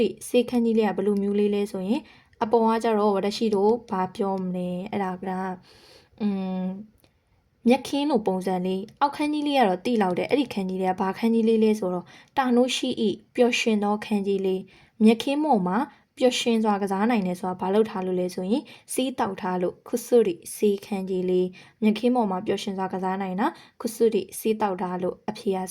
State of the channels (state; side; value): identical; both; correlation 1.00